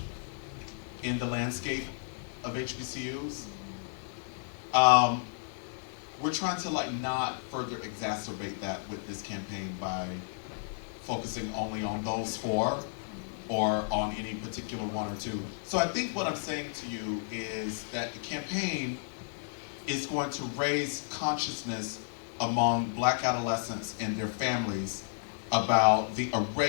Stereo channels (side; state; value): right; silent; digital silence